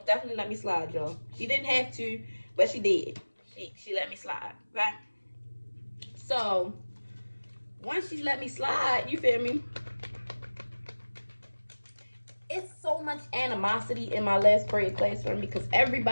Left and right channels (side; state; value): both; inverted; correlation -1.00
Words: definitely let me slide, y'all. She didn't have to, but she did. She let me slide, okay? So once she let me slide, you feel me? It's so much animosity in my last period classroom because